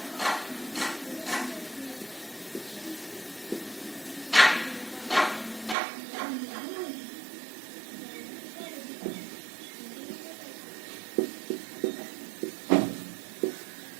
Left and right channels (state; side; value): drops out; left; at 5.8 s